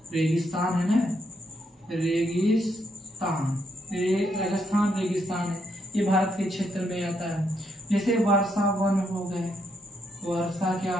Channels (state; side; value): normal; both; correlation 0.77